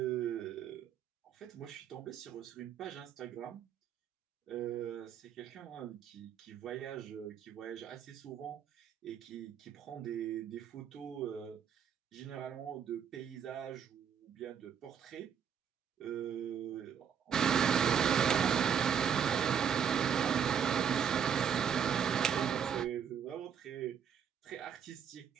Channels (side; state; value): left; quieter; 7.9 dB